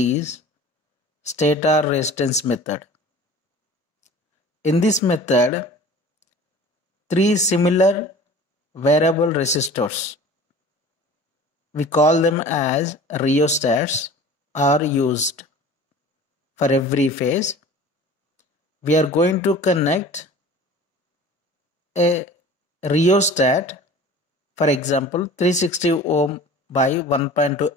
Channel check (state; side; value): normal; both; correlation 0.42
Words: stator resistance method. In this method, three similar variable resistors, we call them as rheostats, are used for every phase. We are going to connect a rheostat, for example 360 ohm by 1.2